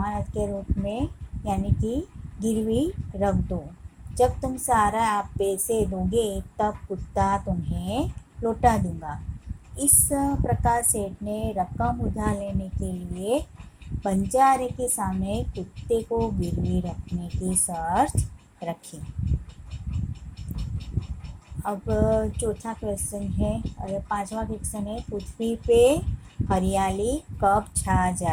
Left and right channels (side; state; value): both; identical; correlation 1.00